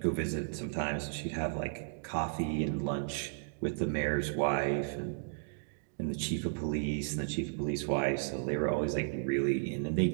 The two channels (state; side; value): silent; left; digital silence